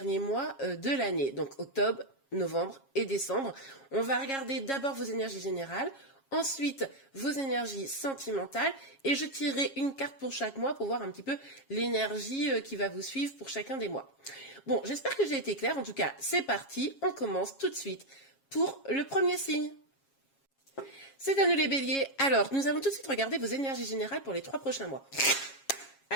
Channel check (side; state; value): right; late; 7.3 ms